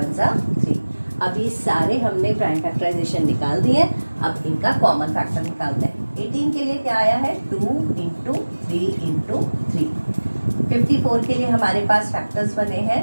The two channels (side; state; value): both; inverted; correlation -1.00